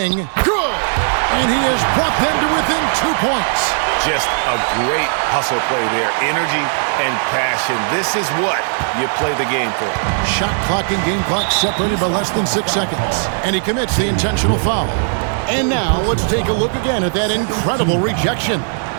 Good! And he has brought them to within 2 points. Just a great hustle play there. Energy and passion. This is what you play the game for. Shot clock and game clock separated by less than 6 seconds. And he commits the intentional foul. And now let's take a look again at that incredible rejection.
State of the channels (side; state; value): left; silent; 67 dB below the other